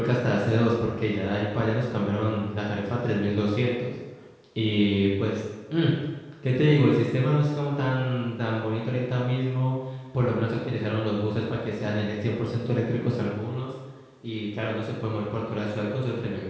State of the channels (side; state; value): both; identical; correlation 1.00